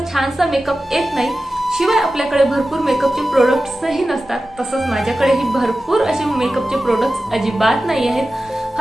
छानसा मेकअप येत नाही, शिवाय आपल्याकडे भरपूर मेकअपचे प्रोडक्ट्सही नसतात। तसंच माझ्याकडेही भरपूर असे मेकअपचे प्रोडक्ट्स अजिबात नाही आहेत,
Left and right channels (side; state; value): both; normal; correlation 0.94